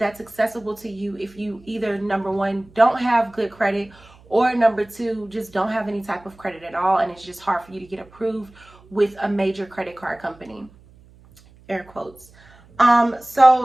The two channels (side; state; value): right; noise; hum, 26 dB below the sound